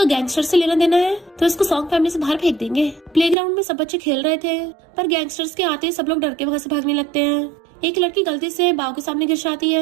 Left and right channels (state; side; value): drops out; left; at 3.4 s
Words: गैंगस्टर से लेना देना है तो इसको सॉन्ग फैमिली से बाहर फेंक देंगे। प्लेग्राउंड में सब बच्चे खेल रहे थे, पर गैंगस्टर्स के आते ही सब लोग डर के वहाँ से भागने लगते हैं। एक लड़की गलती से बाव के सामने गिर जाती